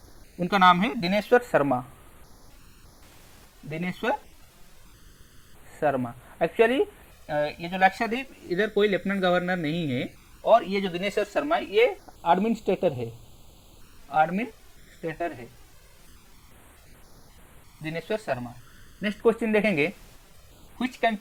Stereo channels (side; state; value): both; identical; correlation 1.00